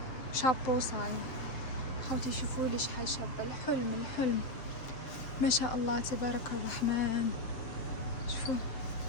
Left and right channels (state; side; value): late; right; 7.6 ms